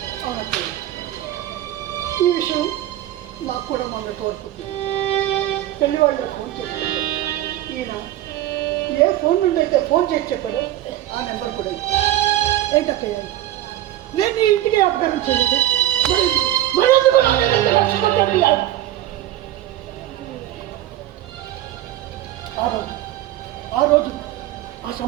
అవునండి, ఈ విషయం నాకు కూడా మొన్న తోడుకుంటుంది. పెళ్లి వాళ్ళు ఫోన్ చేసి ఈయన ఏ ఫోన్ నుండి అయితే ఫోన్ చేసి చెప్పారో ఆ నెంబర్ కూడా ఏంటక్కయ్య, నేను నీ ఇంటికి అపకారం చేయలేదు. ఆ రోజు ఆ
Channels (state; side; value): quieter; left; 13.7 dB